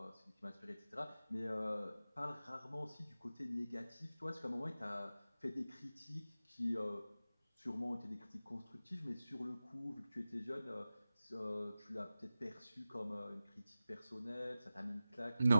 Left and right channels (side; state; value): both; inverted; correlation -0.94